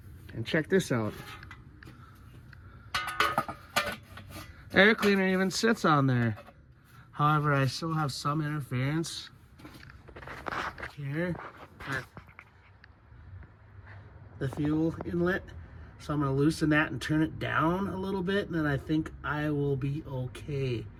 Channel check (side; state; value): both; identical; correlation 1.00